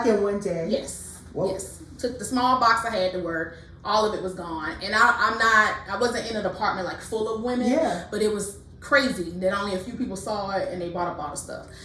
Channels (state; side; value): identical; both; correlation 1.00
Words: in one day? Yes. Whoa. Yes. Took the small box I had to work. All of it was gone. And I wasn't in a department like full of women, but it was crazy that only a few people saw it and they bought up all the stuff.